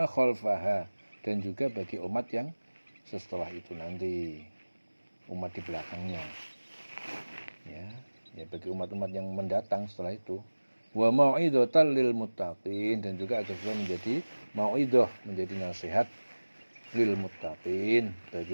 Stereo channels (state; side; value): inverted; both; correlation -1.00